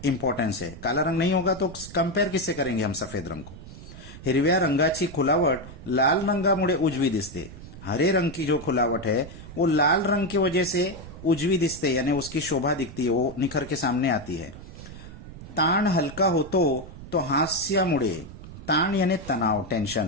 इम्पोर्टेंस है. काला रंग नहीं होगा तो कंपेयर किससे करेंगे हम सफेद रंग को? हिरव्या रंगाची खुलावट लाल रंगामुळे उजवी दिसते. हरे रंग की जो खुलावट है वो लाल रंग की वजह से उजवी दिसते, यानी उसकी शोभा दिखती है, वो निखर के सामने आती है. ताण हलका होतो तो हास्यामुळे, ताण यानी तनाव,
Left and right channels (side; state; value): right; noise; rumble, 14 dB below the sound